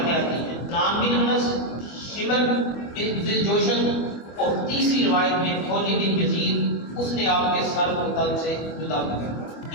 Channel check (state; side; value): late; right; 25 ms